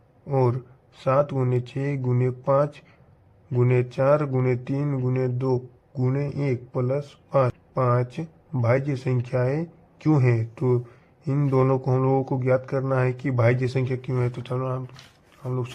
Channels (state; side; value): identical; both; correlation 1.00